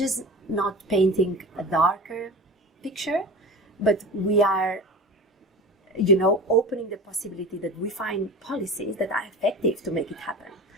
not painting a darker picture, but we are opening the possibility that we find policies that are effective to make it happen.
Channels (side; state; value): both; normal; correlation 0.32